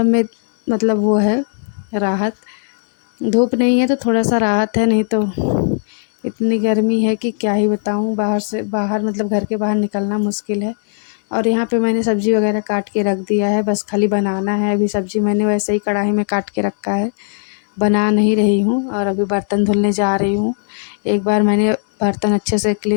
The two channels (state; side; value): silent; right; digital silence